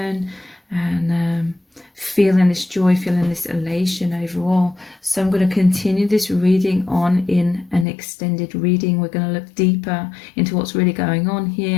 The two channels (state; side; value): drops out; right; at 7.9 s